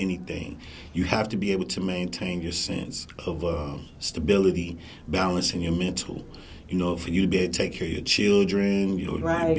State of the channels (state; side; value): identical; both; correlation 1.00